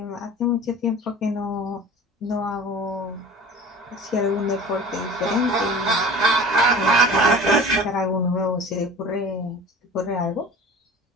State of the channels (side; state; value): both; normal; correlation 0.42